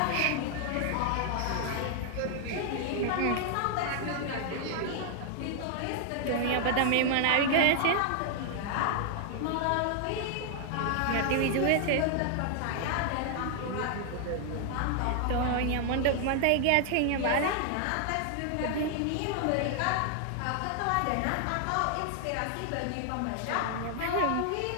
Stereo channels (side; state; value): both; different; correlation 0.00